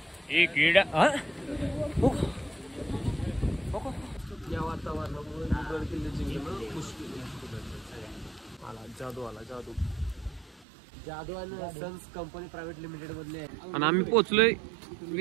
एक किडा. या वातावरणामुळे गड किल्ले जिंकणं मुश्किल आहे. जादू आला जादू. जादू आणि सन्स कंपनी प्रायव्हेट लिमिटेड मधले आहे. आणि आम्ही पोहोचलोय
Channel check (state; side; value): drops out; left; at 10.7 s